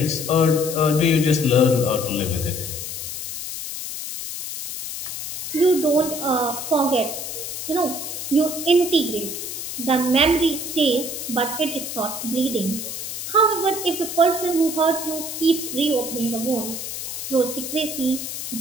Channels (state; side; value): noise; left; hiss, 6 dB below the sound